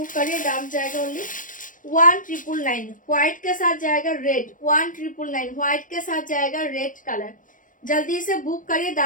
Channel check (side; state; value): right; late; 0.38 ms